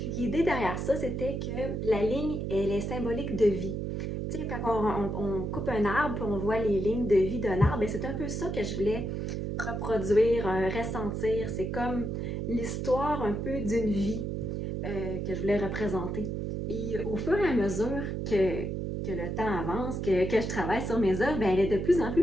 l'idée derrière ça, c'était que la ligne, elle est symbolique de vie. Tu sais, quand on coupe un arbre, puis on voit les lignes de vie d'un arbre, c'est un peu ça que je voulais reproduire, ressentir. C'est comme l'histoire un peu d'une vie que je voulais représenter. Et au fur et à mesure que le temps avance, que je travaille sur mes œuvres, elle est de plus en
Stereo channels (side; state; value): right; noise; hum, 3 dB below the sound